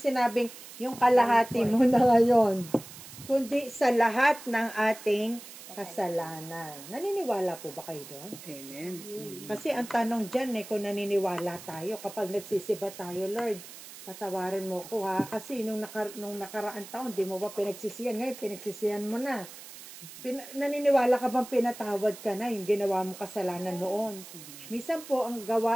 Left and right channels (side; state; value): right; noise; hiss, 15 dB below the sound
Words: yung kalahati mo na ngayon, kundi sa lahat ng ating kasalanan. Naniniwala po ba kayo doon? Amen. Kasi ang tanong dyan kung naniniwala tayo, kapag nagsisiba tayo, Lord, patawarin mo ko ha, kasi nung nakaraang taon, di mo ba pinagsisihan? Ngayon, pinagsisihan mo na. Naniniwala ka bang pinatawad ka na yung ginawa mong kasalanan noon? Minsan po, ang